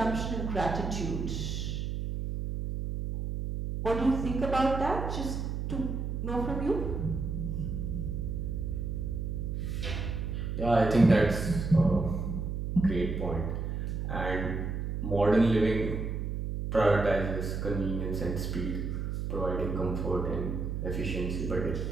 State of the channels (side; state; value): right; noise; hum, 3 dB below the sound